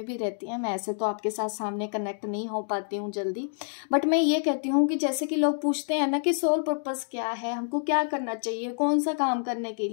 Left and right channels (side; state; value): right; silent; digital silence